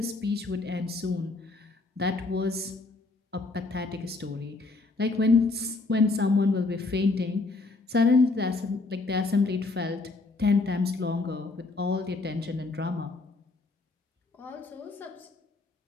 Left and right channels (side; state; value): right; quieter; 3.5 dB